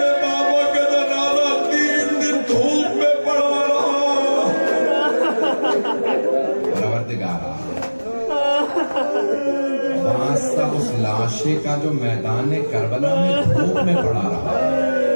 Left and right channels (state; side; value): inverted; both; correlation -1.00